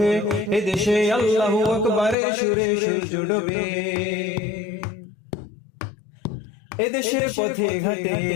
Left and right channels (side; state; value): right; drops out; at 2.1 s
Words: এদেশে আল্লাহু আকবারের সুরে সূর্য ডোবে। এদেশের পথে ঘাটে,